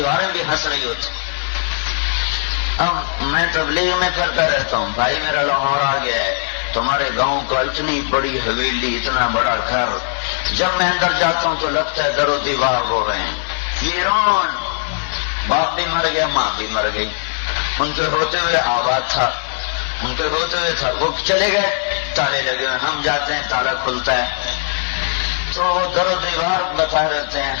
بھی ہنس رہی ہوتی. اب میں تبلیغ میں پھرتا رہتا ہوں، بھائی میرا لاہور آ گیا ہے، تمہارے گاؤں کا اتنی بڑی حویلی، اتنا بڑا گھر، جب میں اندر جاتا ہوں تو لگتا ہے در و دیوار ہو رہے ہیں، ویران. باپ بھی مر گیا، ماں بھی مر گئی، ان کے ہوتے ہوئے آباد تھا، ان کے ہوتے ہوئے تھا، وہ چلے گئے، تالے لگے ہوئے، ہم جاتے ہیں تالا کھلتا ہے تو در و دیوار بتا رہتے ہیں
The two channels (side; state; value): right; silent; 62 dB below the other